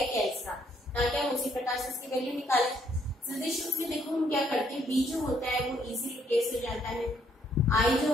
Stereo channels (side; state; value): both; normal; correlation 0.69